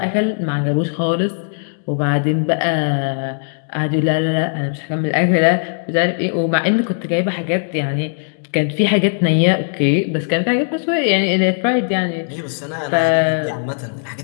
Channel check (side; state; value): right; silent; digital silence